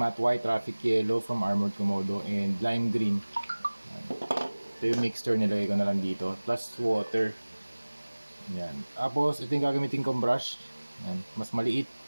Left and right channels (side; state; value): both; inverted; correlation -1.00